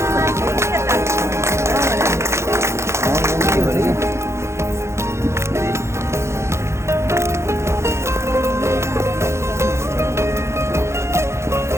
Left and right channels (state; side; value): late; left; 0.13 ms